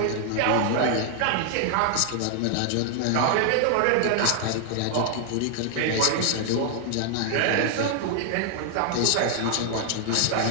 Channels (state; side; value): different; both; correlation 0.00